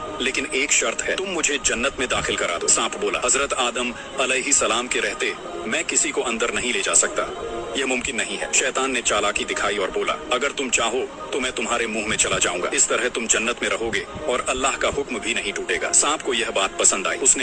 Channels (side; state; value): both; identical; correlation 1.00